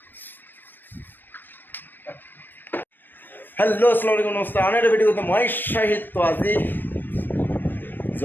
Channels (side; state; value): right; late; 0.089 ms